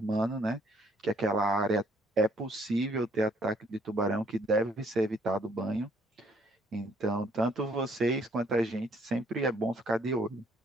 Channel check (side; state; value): both; normal; correlation 0.65